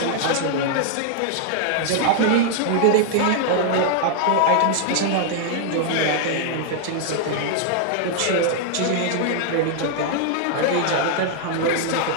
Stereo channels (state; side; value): different; both; correlation 0.00